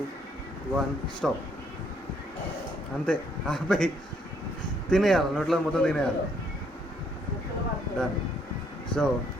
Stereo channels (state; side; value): normal; both; correlation 0.69